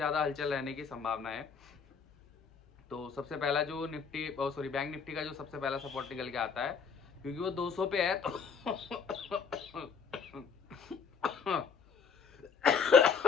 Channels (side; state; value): right; quieter; 6.0 dB